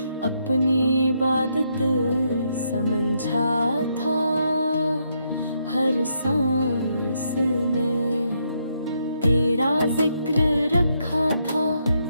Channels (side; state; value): both; inverted; correlation -0.77